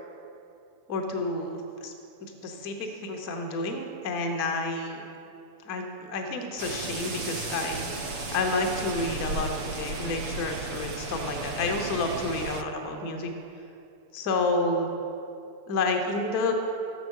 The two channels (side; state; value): left; late; 7.0 ms